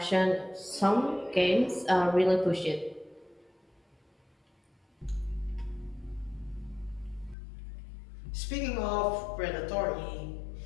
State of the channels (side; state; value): right; drops out; at 7.4 s